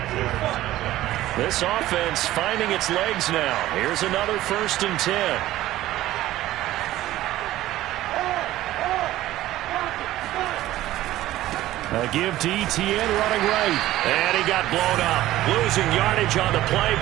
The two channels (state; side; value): quieter; left; 15.1 dB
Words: This offense finding its legs now. Here's another 1st and 10. A give to Etienne running right. And he got blown up. Losing yardage on the play